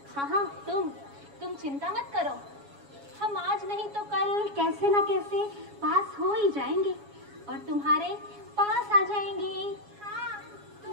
हाँ, तुम चिंता मत करो। हम आज नहीं तो कल कैसे ना कैसे पास हो ही जाएंगे और तुम्हारे पास आ जाएंगे। हाँ,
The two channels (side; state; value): left; late; 7.2 ms